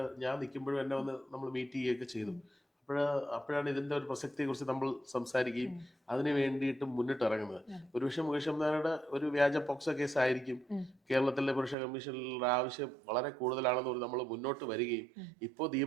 ഞാൻ നിൽക്കുമ്പോഴും എന്നെ വന്ന് നമ്മൾ മീറ്റ് ചെയ്യുകയൊക്കെ ചെയ്തു. അപ്പോഴാണ് ഇതിന്റെ ഒരു പ്രസക്തിയെക്കുറിച്ച് നമ്മൾ സംസാരിക്കുകയും അതിന് വേണ്ടിയിട്ട് മുന്നിട്ടിറങ്ങുന്നത്. ഒരുപക്ഷെ മുകേഷ് അംബാനിയുടെ ഒരു വ്യാജ പോക്സോ കേസ് ആയിരിക്കും കേരളത്തിലെ പുരുഷ കമ്മീഷനിലുള്ള ആവശ്യം വളരെ കൂടുതലാണെന്ന് നമ്മൾ മുന്നോട്ട് വരികയും ഇപ്പോൾ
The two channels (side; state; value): left; drops out; at 11.8 s